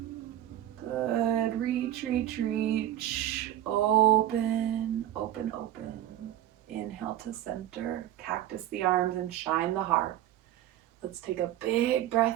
Good. Reach, reach, reach. Open, open, open. Inhale to center, cactus the arms and shine the heart. Let's take a big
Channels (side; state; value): left; quieter; 12.6 dB